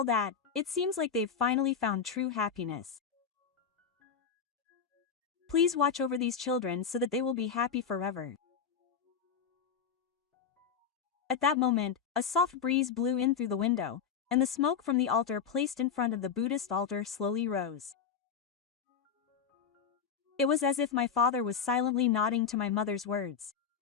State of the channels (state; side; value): quieter; right; 6.8 dB